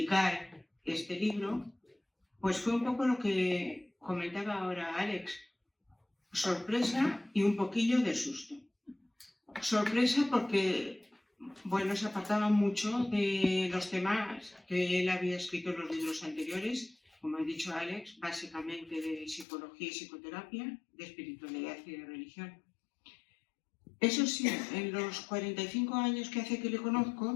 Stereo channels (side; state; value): right; drops out; at 19.5 s